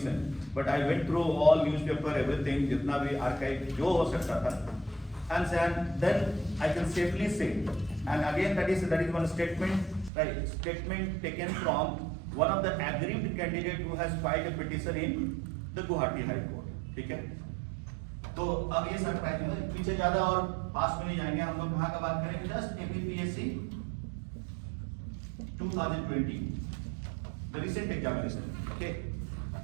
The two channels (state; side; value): drops out; left; at 10.1 s